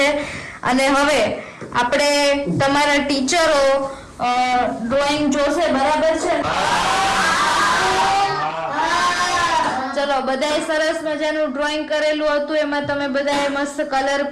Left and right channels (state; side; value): identical; both; correlation 1.00